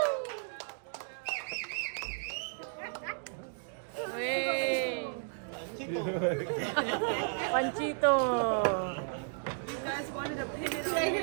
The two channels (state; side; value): silent; left; digital silence